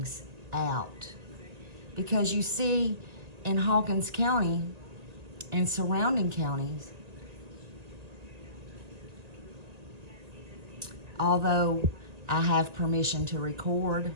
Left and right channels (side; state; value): left; late; 1.8 ms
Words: out. Because you see, in Hawkins County and surrounding counties, although I have permission to record